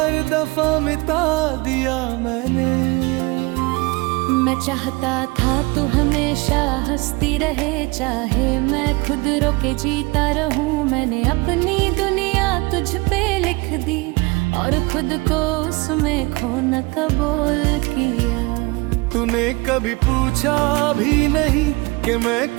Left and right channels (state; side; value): quieter; left; 25.5 dB